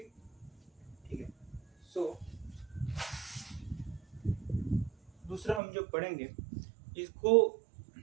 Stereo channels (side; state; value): left; drops out; at 5.6 s